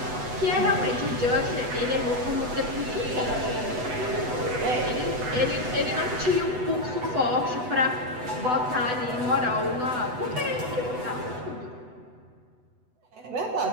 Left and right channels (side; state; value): left; late; 8.0 ms